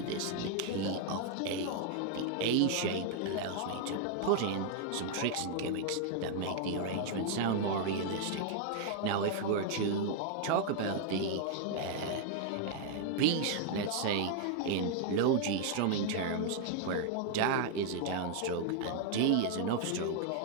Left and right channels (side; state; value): both; different; correlation 0.00